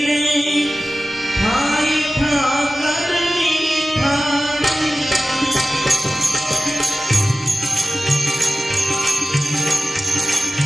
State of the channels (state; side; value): normal; both; correlation 0.96